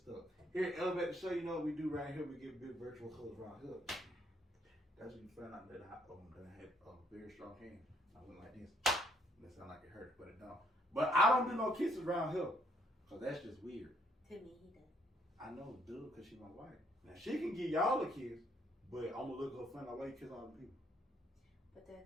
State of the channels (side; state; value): both; normal; correlation 0.69